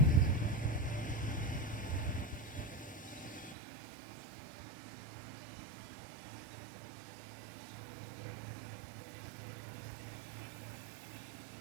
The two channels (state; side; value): drops out; left; at 3.6 s